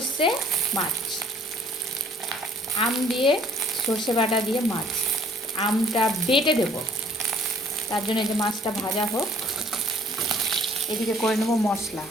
মাছ, আম দিয়ে সর্ষে বাটা দিয়ে মাছ। আমটা বেটে দেবো, তার জন্য এই যে মাছটা ভাজা হোক। এদিকে করে নেবো মশলা।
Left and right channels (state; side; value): normal; both; correlation 0.57